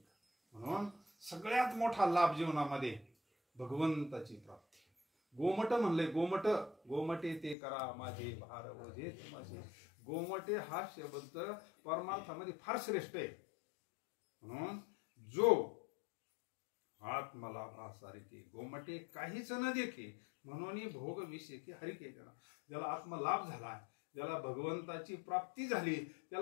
म्हणून सगळ्यात मोठा लाभ जीवनामध्ये भगवंताची प्राप्ती. गोमट म्हणले, गोमट गोमटे ते करा माझे भार ओझे माझे. गोमटे हा शब्द परमार्थामध्ये फार श्रेष्ठ आहे. म्हणून जो आत्मलाभासारखे गोमटे काहीच न देखे म्हणून भोग विषयी हरिके. ज्याला आत्मलाभ झाला ज्याला भगवंताची प्राप्ती झाली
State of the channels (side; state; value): right; drops out; at 7.6 s